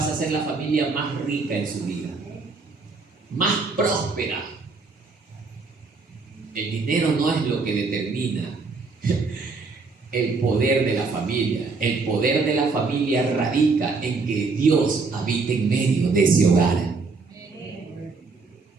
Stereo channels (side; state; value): left; quieter; 4.3 dB